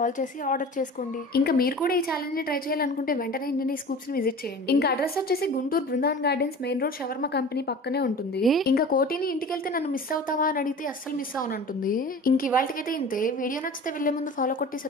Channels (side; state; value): both; normal; correlation 0.38